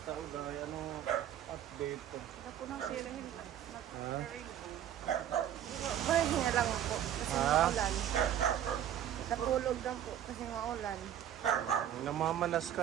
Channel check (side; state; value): left; quieter; 10.6 dB